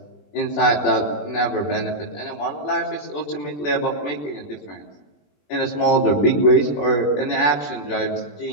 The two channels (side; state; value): right; late; 20 ms